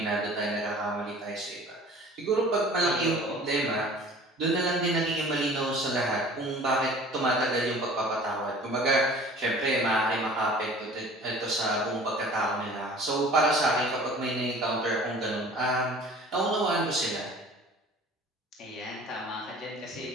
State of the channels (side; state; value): both; normal; correlation 0.46